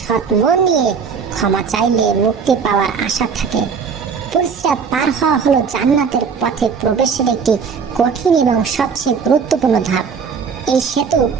মন নিয়ে ক্ষমা চাইলে মুক্তি পাওয়ার আশা থাকে। পুলসিরাত পার হওয়া হলো জান্নাতের পথে প্রবেশের একটি কঠিন এবং সবচেয়ে গুরুত্বপূর্ণ ধাপ। এই সেতু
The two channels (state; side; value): quieter; left; 6.0 dB